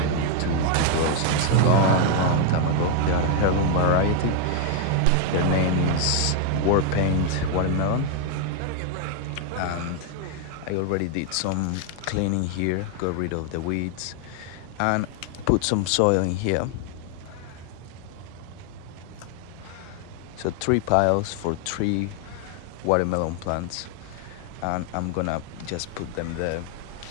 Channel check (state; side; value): different; both; correlation 0.00